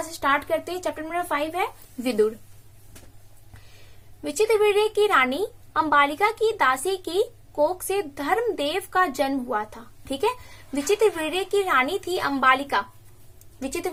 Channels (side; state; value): both; identical; correlation 1.00